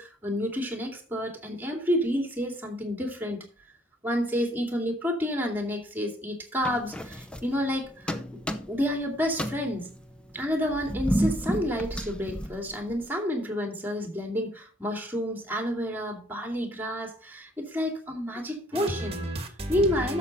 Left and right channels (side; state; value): both; normal; correlation 0.65